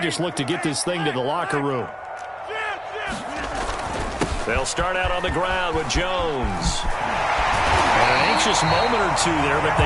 look to get this thing to the locker room. They'll start out on the ground with Jones. And an anxious moment or two there, but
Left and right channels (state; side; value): identical; both; correlation 1.00